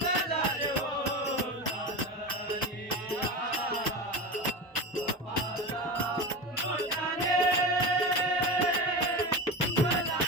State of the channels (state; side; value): normal; both; correlation 0.25